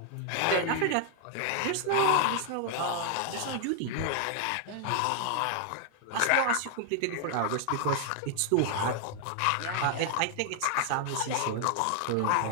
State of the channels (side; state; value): both; different; correlation 0.00